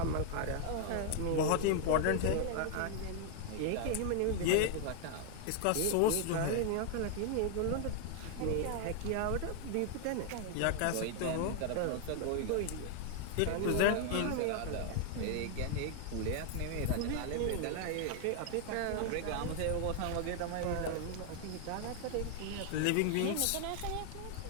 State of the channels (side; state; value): both; different; correlation 0.00